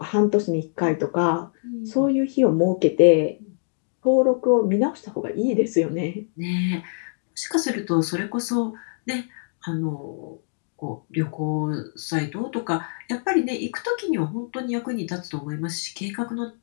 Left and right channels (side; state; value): right; silent; digital silence